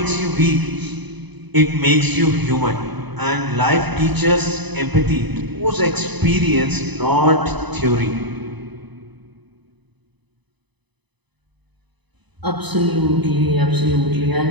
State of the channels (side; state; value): left; late; 0.99 ms